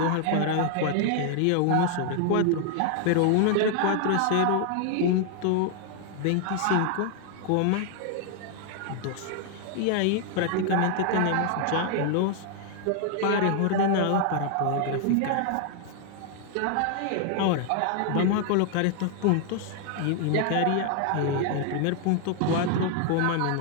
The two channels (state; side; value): different; both; correlation 0.00